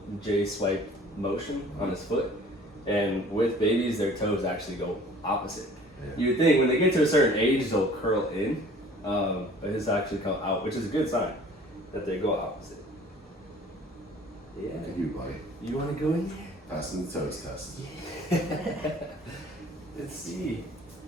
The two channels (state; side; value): normal; both; correlation 0.50